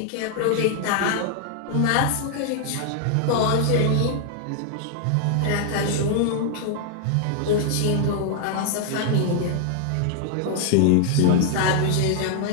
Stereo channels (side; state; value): both; different; correlation 0.00